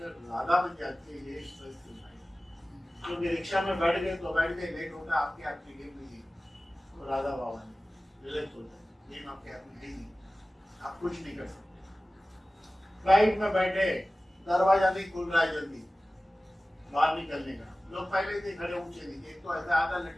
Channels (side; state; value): both; normal; correlation 0.97